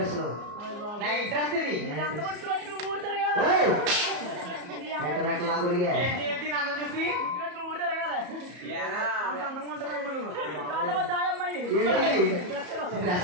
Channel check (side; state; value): left; late; 34 ms